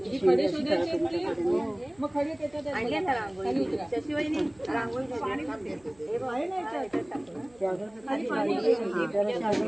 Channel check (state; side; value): noise; right; hum, 30 dB below the sound